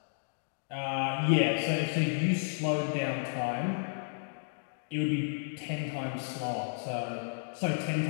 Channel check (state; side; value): silent; right; digital silence